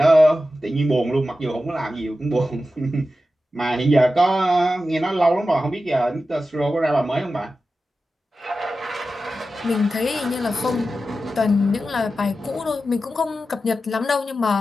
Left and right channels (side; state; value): both; normal; correlation 0.92